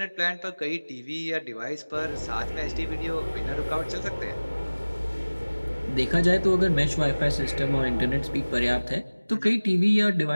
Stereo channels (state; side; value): inverted; both; correlation -1.00